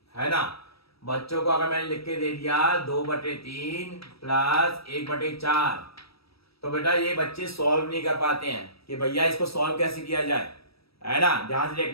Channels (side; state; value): right; late; 0.76 ms